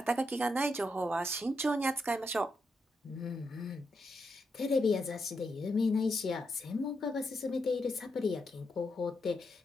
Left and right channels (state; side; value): normal; both; correlation 0.83